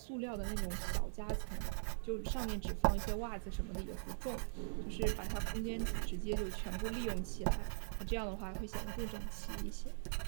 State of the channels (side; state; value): left; silent; digital silence